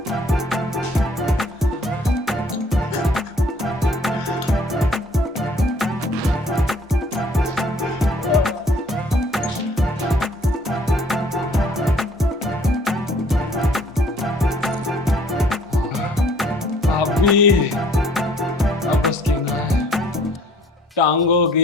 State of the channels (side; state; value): both; normal; correlation 0.58